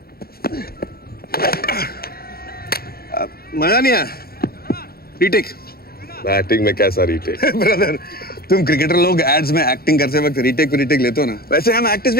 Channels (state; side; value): late; right; 0.44 ms